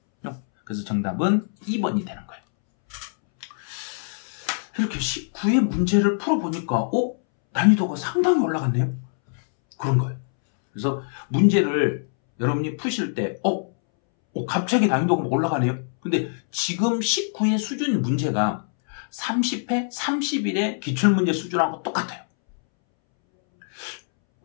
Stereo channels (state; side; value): silent; right; 63 dB below the other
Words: 그래서 정답은 2번이 되는 거예요. 이렇게 19의 문제를 풀어보니까 난이도가 상당히 올라갔네요. 그런 거예요. 그래서 문제를 여러분이 푸실 때 갑자기 난이도가 올라가네요. 근데 지금 19의 수준 문제가 30회, 31의 기출문제 수준하고 똑같아요.